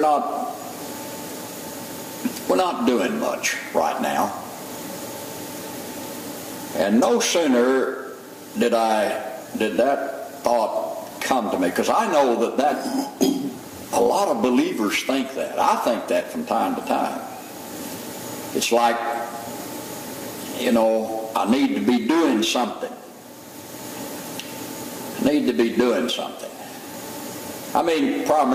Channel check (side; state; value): both; identical; correlation 1.00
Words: doing much right now. And no sooner did that thought come to me, because I know that a lot of believers think that. I think that from time to time. It's like, you know, I need to be doing something. I need to be doing something. I mean,